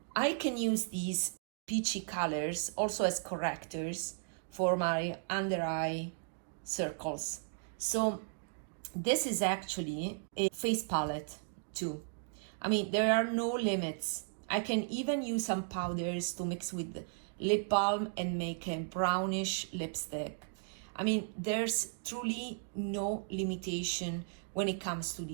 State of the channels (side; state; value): left; silent; digital silence